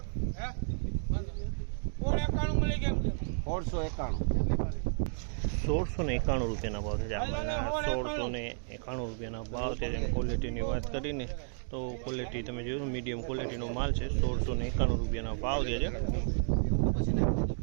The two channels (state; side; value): silent; left; digital silence